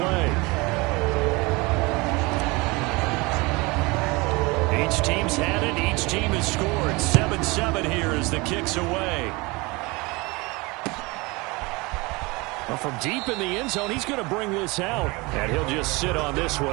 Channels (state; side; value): quieter; left; 24.9 dB